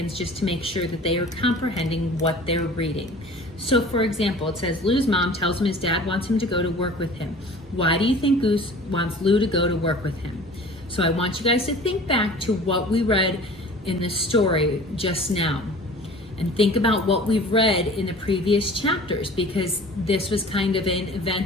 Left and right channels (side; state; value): both; normal; correlation 0.44